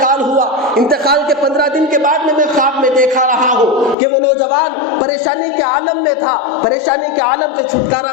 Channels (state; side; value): drops out; right; at 4.0 s